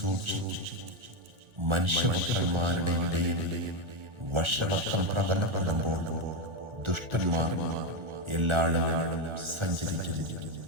മനുഷ്യപുത്രന്മാരുടെ ഇടയിൽ വഷളത്വം പ്രബലപ്പെടുമ്പോൾ ദുഷ്ടന്മാർ എല്ലായിടവും സഞ്ചരിക്കുന്നു.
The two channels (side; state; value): left; late; 1.4 ms